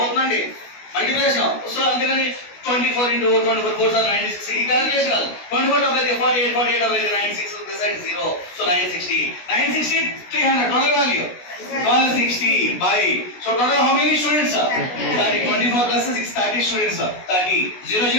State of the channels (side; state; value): right; late; 16 ms